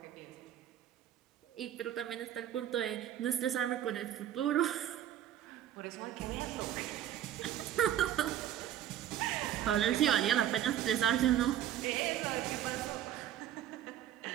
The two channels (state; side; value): quieter; left; 11.5 dB